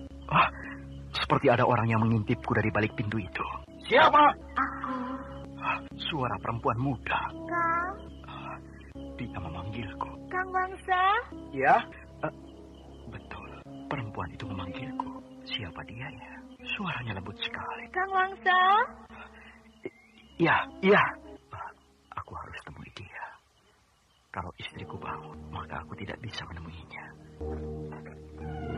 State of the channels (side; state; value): both; identical; correlation 1.00